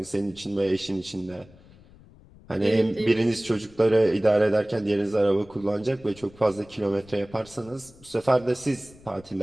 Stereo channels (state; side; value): noise; left; rumble, 24 dB below the sound